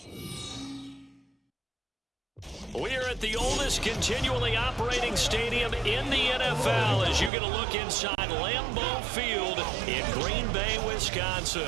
We're at the oldest continually operating stadium in the NFL as you get a look inside Lambeau Field in Green Bay,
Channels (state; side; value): drops out; left; at 7.3 s